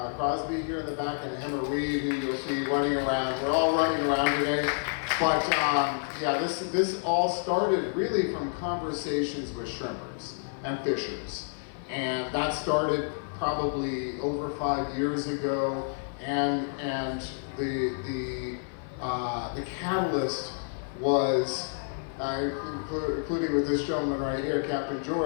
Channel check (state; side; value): silent; right; 58 dB below the other